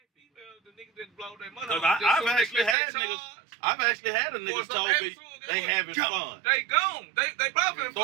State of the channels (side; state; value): left; drops out; at 2.8 s